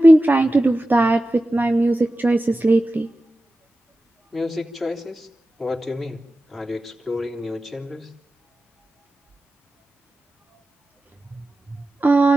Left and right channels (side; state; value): both; normal; correlation 0.94